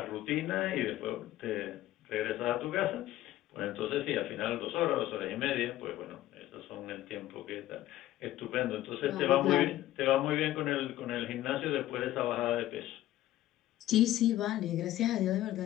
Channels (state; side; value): quieter; right; 14.5 dB